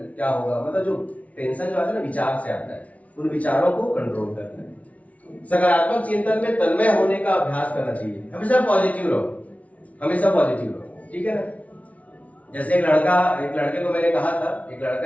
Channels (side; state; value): right; late; 0.067 ms